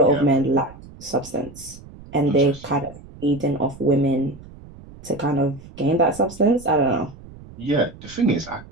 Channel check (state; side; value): noise; right; rumble, 19 dB below the sound